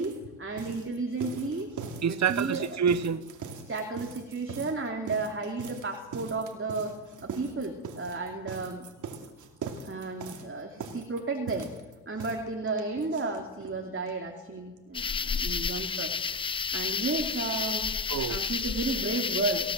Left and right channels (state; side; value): normal; both; correlation 0.08